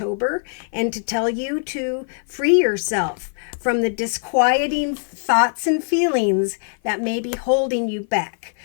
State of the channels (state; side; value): silent; right; 55 dB below the other